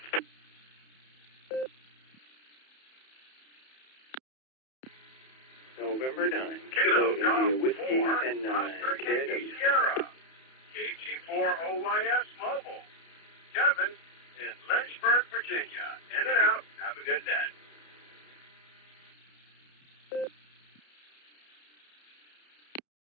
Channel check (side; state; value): right; late; 31 ms